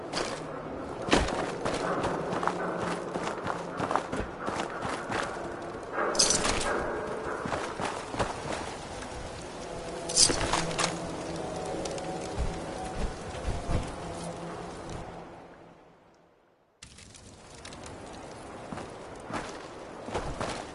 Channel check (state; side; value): identical; both; correlation 1.00